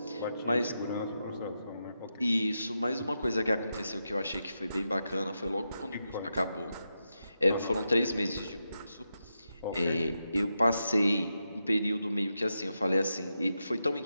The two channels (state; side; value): inverted; both; correlation -0.87